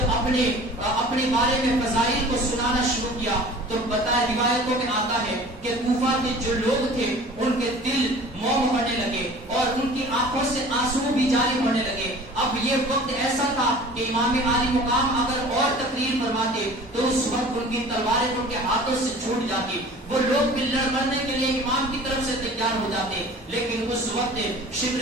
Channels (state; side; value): normal; both; correlation 0.44